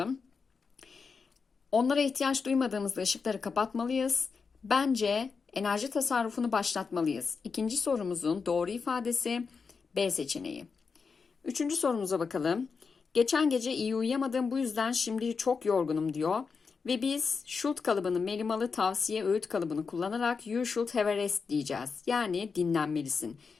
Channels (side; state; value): right; quieter; 5.2 dB